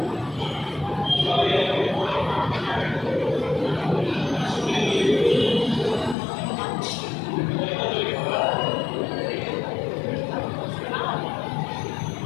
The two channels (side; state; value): right; drops out; at 6.2 s